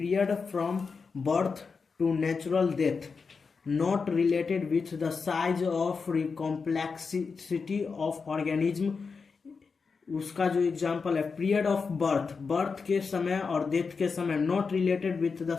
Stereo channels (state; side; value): quieter; right; 5.1 dB